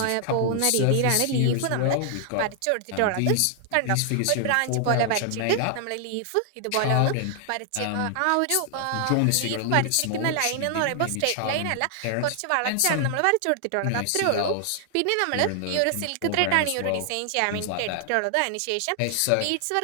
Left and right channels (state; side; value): different; both; correlation 0.00